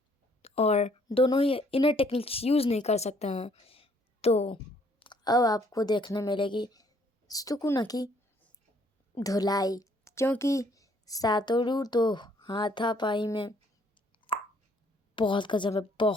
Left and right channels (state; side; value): normal; both; correlation 0.64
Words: और दोनों ही इनर टेक्निक्स यूज़ नहीं कर सकते हैं। तो अब आपको देखने मिलेगी सुकुना की धुलाई, क्योंकि सातोरू तो हाथापाई में बहुत गजब है,